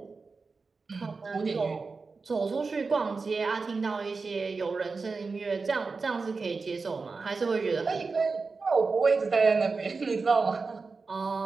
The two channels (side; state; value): left; quieter; 4.3 dB